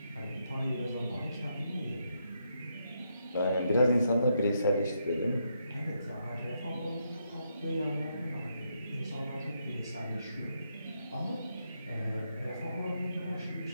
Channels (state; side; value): inverted; both; correlation -0.79